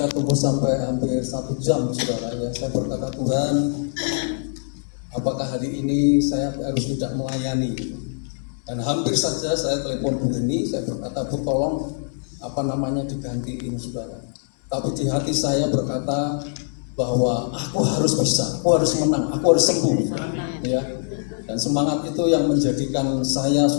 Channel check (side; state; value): right; silent; 63 dB below the other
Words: tunggu sampai hampir 1 jam, saudara. Ya, saya berkata, Tuhan, apakah hari ini saya harus tidak melayani? Dan hampir saja saya telepon Bu Heni, saya berkata, Bu tolong digantiin, saudara. Tapi di hati saya berkata bahwa aku harus bisa, aku harus menang, aku harus sembuh, ya. Dan semangat itu yang menjadikan saya,